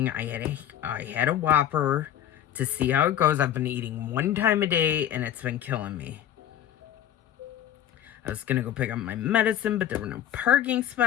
I had a Whopper to see how it goes. I've been eating one time a day, and it's been killing me. I was going to go pick up my medicine, but there were no parking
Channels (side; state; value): right; quieter; 10.9 dB